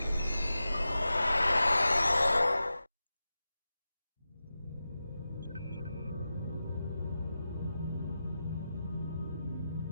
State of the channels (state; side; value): inverted; both; correlation -0.92